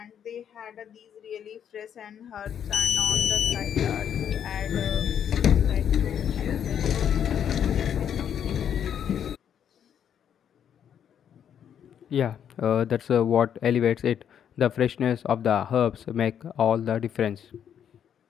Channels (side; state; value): right; quieter; 8.9 dB